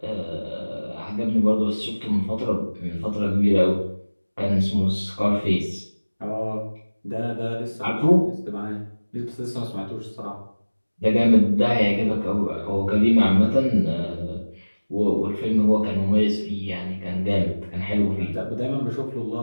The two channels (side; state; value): both; inverted; correlation -1.00